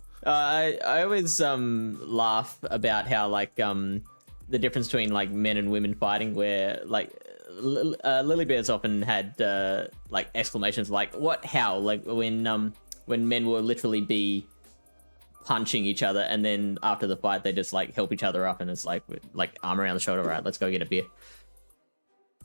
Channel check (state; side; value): inverted; both; correlation -1.00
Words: I always laugh about how like the difference between like men and women fighting, where like Lily Bear's often had like exclamations like "what? How?" Like when men will literally be punching each other, and then after the fight they just like help each other up, and it's like arm around the shoulder, right? Let's go get a beer.